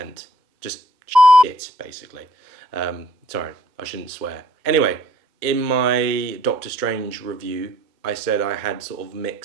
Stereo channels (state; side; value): late; left; 2.1 ms